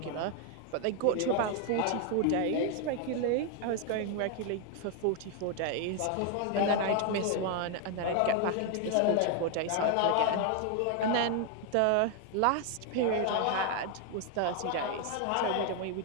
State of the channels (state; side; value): different; both; correlation 0.00